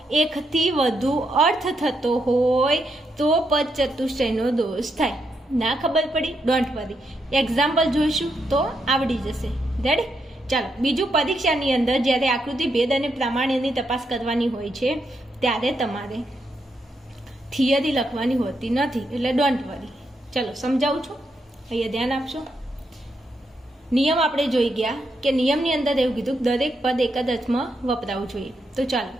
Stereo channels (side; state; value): both; normal; correlation 0.81